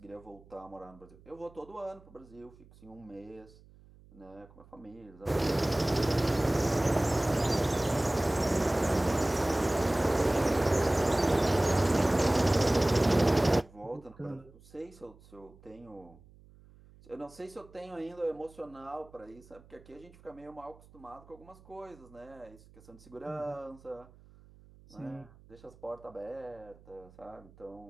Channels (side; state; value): right; noise; hum, 24 dB below the sound